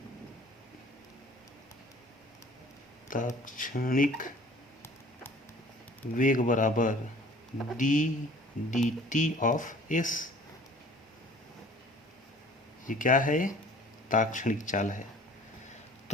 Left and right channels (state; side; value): normal; both; correlation 0.50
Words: ताक्षणिक वेग बराबर d d t of s. ये क्या है? ताक्षणिक चाल है।